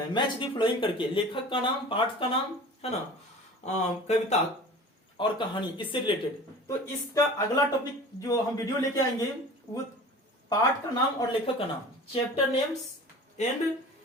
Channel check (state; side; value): normal; both; correlation 0.40